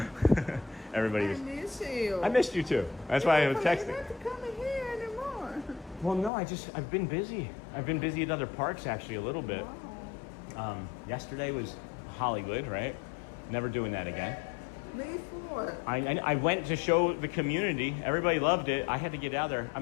Everybody was... I miss you. I missed you too. That's why I was texting. You're not coming here anymore. Well, no, I've been busy. I've been busy at other parks, actually, a little bit. Wow. Yesterday was Hollywood, right? Never doing that again. Me for. I went to show the community. Everybody loved it. I had to get out there.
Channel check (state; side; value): drops out; right; at 6.3 s